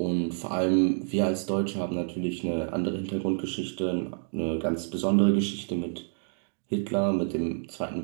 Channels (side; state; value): left; silent; digital silence